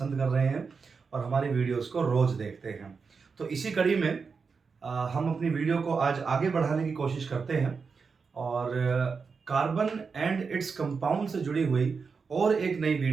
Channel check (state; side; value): quieter; left; 5.2 dB